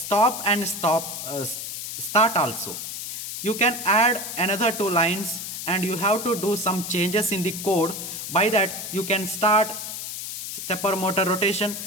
and start also. You can add another two lines and you have to do some changes in the code. By that you can start stepper motor rotation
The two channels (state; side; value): noise; left; hiss, 7 dB below the sound